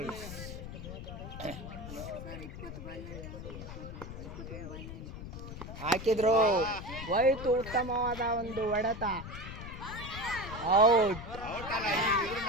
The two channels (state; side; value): noise; left; rumble, 10 dB below the sound